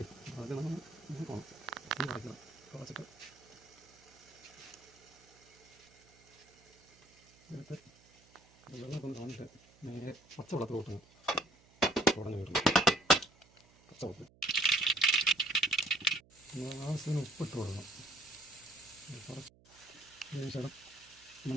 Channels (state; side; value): noise; right; hum, 28 dB below the sound